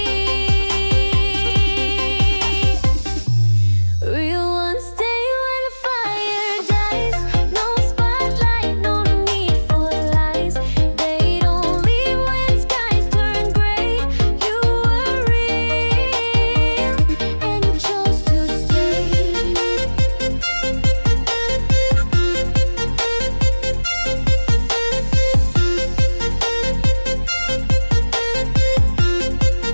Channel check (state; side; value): inverted; both; correlation -1.00